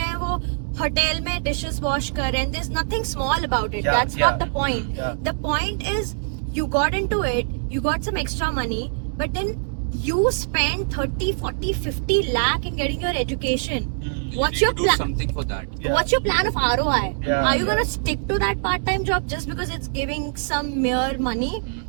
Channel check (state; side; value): silent; left; digital silence